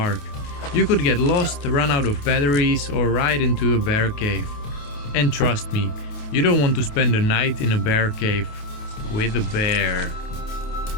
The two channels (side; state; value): right; late; 28 ms